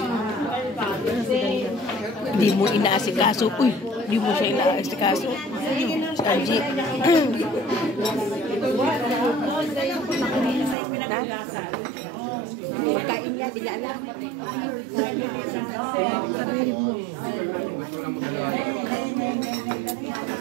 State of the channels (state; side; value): drops out; left; at 10.8 s